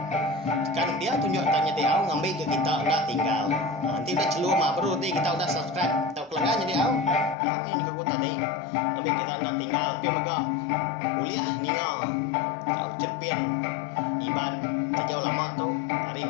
kan dia tunjuk tanya dia awak ngambil ke kita udah tinggal nanti udah celur mah baru nanti kita udah subscribe tahu kelanggan jadi awak ini ke aku tadi ngambil kita udah tinggal pemega uliah ninga tahu cerpin iban sejauh lama tu hari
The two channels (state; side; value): drops out; right; at 7.4 s